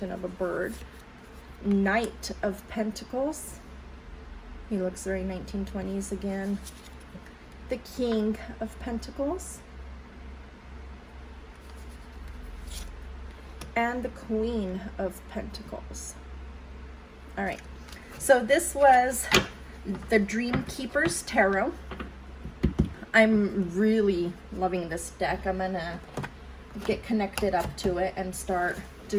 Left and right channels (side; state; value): both; identical; correlation 1.00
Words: of a bird. Knight of Pentacles. He looks very 1920s again. The King of Pentacles. And the Queen of Pentacles. All right. So this was the Dreamkeepers Tarot. I'm really loving this deck. I'm gonna get connected up to it and start